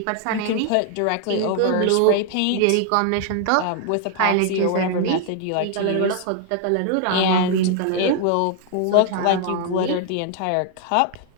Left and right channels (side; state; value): both; different; correlation 0.00